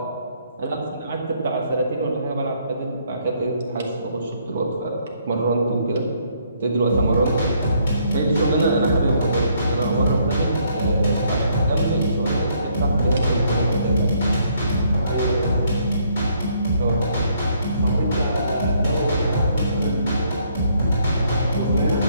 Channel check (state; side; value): inverted; both; correlation -0.69